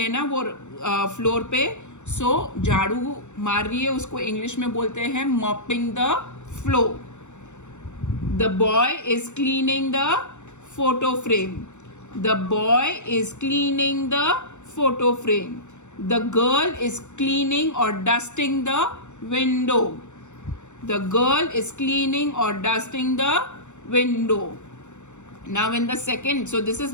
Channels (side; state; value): right; late; 0.84 ms